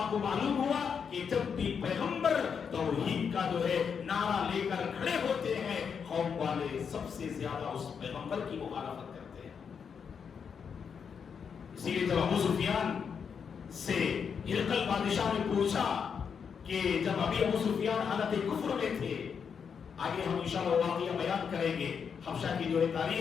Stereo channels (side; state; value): right; quieter; 6.7 dB